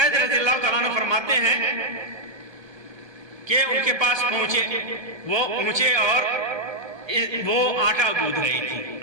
رضی اللہ تعالیٰ عنہ فرماتے ہیں کہ ان کے پاس پہنچے، وہ پہنچے اور وہ آٹا گوندھ رہی تھی،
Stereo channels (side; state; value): left; late; 1.3 ms